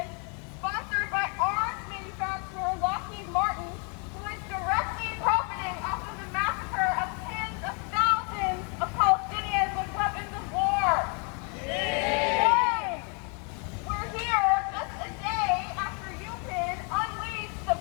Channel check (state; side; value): quieter; right; 36.1 dB